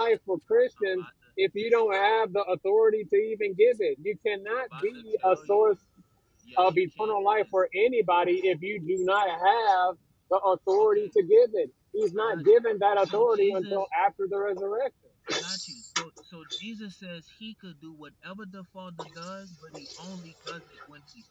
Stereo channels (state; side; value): identical; both; correlation 1.00